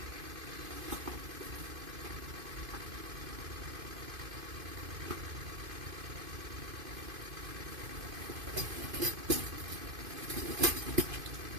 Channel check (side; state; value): left; late; 2.5 ms